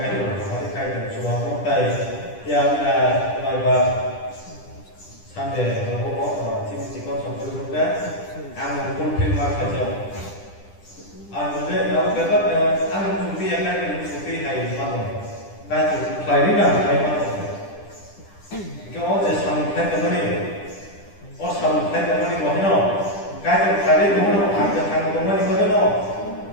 kayak cuma mutai yang sampai beberapa tim kon juga ang pulpil marka jauh. Ang juga dapat ang sufi akan sufi hai mana. Baik, hari ni Kau ada sampai ke mana? Sampai ke mana kau no? Kau hari ni mana? Ada hang ke mana kau no?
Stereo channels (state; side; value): late; right; 10 ms